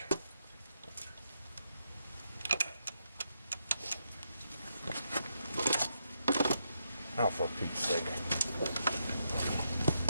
Oh, for Pete's sake.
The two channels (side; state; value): both; inverted; correlation -0.81